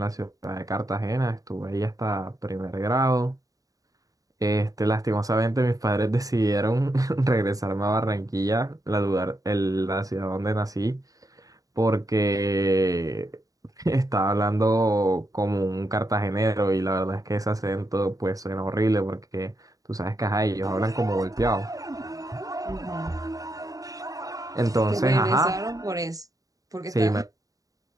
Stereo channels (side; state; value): left; late; 0.17 ms